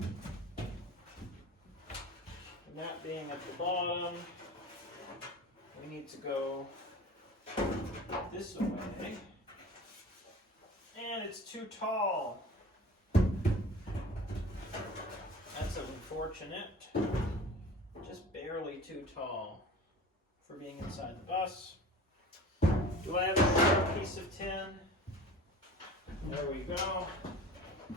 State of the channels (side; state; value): both; normal; correlation 0.40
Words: that being at the bottom, we need to go this way, and it's too tall. That's unfortunate. Just barely too tall for being inside the bus. Do I have a short piece of tin? There we go.